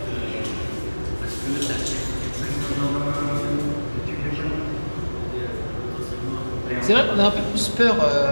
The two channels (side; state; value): both; inverted; correlation -1.00